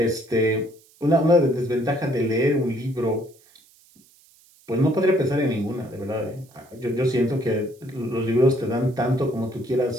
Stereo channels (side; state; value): right; noise; hiss, 29 dB below the sound